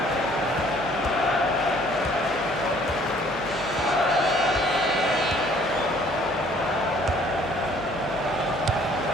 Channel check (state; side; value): noise; left; hum, 20 dB below the sound